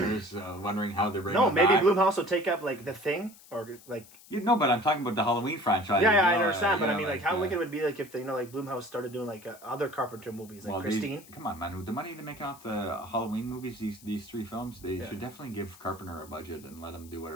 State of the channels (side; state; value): left; noise; hiss, 22 dB below the sound